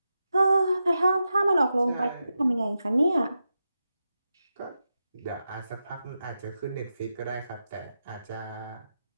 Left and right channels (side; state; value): both; inverted; correlation -0.89